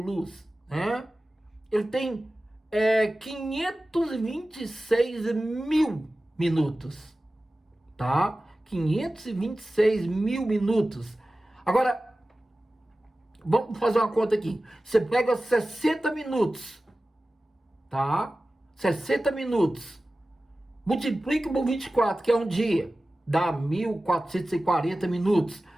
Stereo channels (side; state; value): both; normal; correlation 0.95